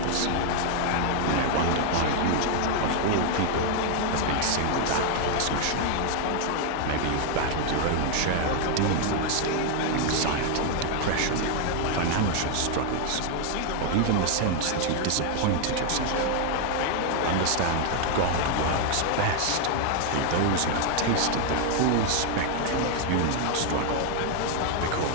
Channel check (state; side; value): different; both; correlation 0.00